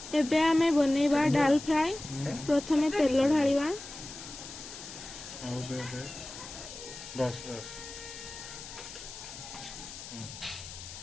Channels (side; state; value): left; noise; hiss, 12 dB below the sound